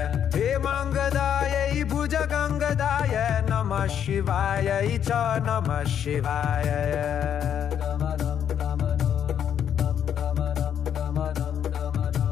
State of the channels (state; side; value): quieter; right; 9.0 dB